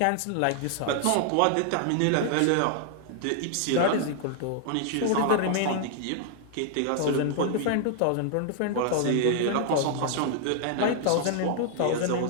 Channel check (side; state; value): both; different; correlation 0.00